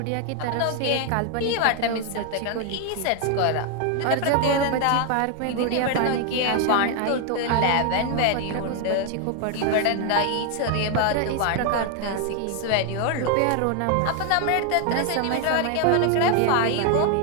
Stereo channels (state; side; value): different; both; correlation 0.01